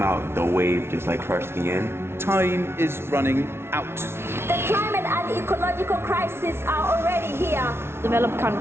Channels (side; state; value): left; late; 0.12 ms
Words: out, the wave just like crushed me in. Time is running out. The climate and ecological crisis are already here. Developed